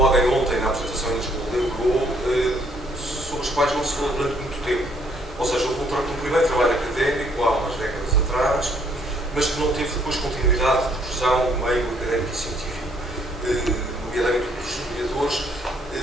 Odem ontem na apresentação em Lisboa lembrou, sobre os quais não se falou durante muito tempo. Ou seja, houve um primeiro trabalho académico, há umas décadas atrás, mas que não teve depois continuidade de profissão no meio académico e científico. Nomeadamente os historiadores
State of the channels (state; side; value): normal; both; correlation 0.66